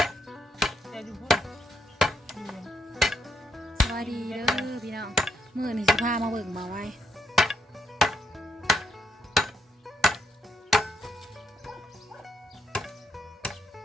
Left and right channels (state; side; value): normal; both; correlation 0.77